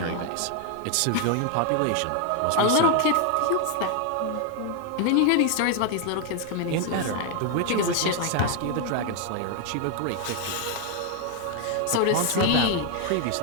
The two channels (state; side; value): different; both; correlation 0.01